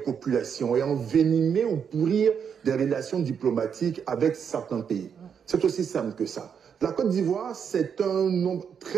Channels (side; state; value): left; quieter; 7.3 dB